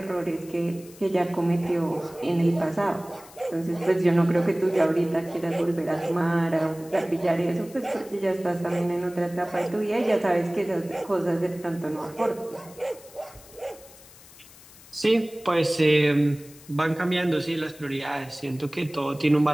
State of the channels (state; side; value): noise; left; hiss, 22 dB below the sound